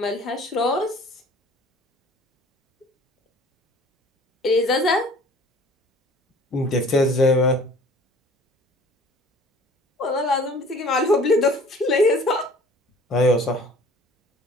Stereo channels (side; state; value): both; normal; correlation 0.50